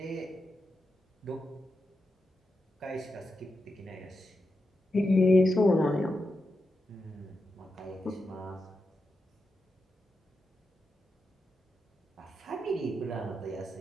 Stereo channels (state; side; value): normal; both; correlation 0.87